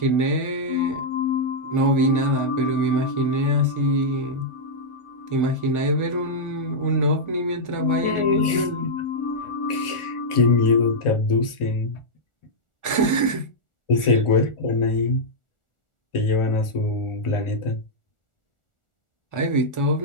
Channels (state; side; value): late; right; 1.4 ms